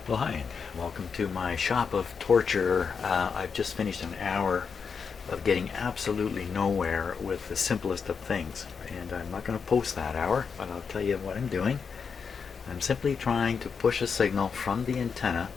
Well, hi, and welcome to my shop of torture. I've just finished an hour of getting absolutely nowhere with the simplest of things, and I'm not going to post that hour, but I'll tell you what I'm doing. I'm simply trying to push a signal from the antenna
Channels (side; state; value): right; quieter; 5.9 dB